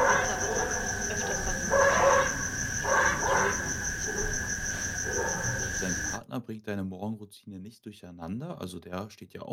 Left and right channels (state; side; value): identical; both; correlation 1.00